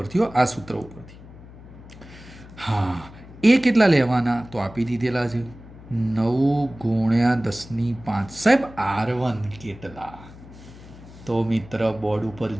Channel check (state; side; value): noise; left; hum, 18 dB below the sound